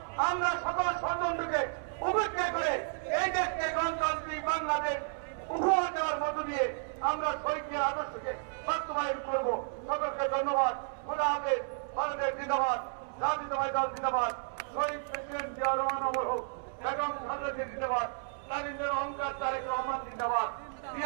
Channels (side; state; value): left; silent; 56 dB below the other